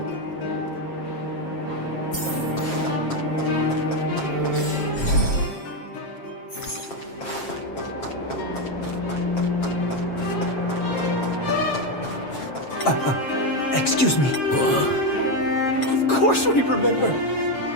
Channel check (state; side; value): late; right; 7.5 ms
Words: Excuse me. Of course we remember.